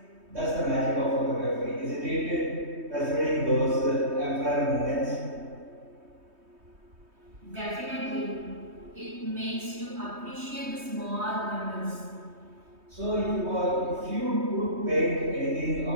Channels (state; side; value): late; left; 3.2 ms